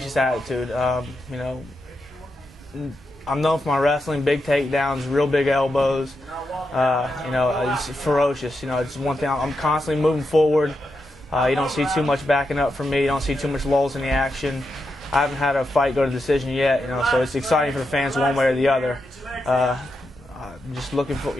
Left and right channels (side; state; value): both; normal; correlation 0.85